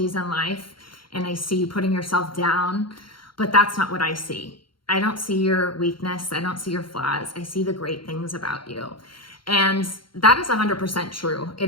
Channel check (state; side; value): late; right; 0.73 ms